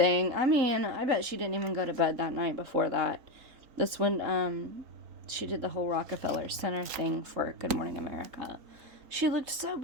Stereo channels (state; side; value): late; left; 3.7 ms